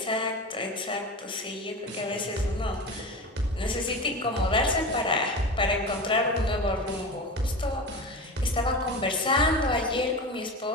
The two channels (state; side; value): normal; both; correlation 0.28